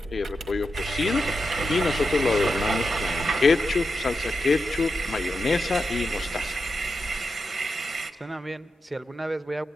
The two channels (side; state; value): both; normal; correlation 0.88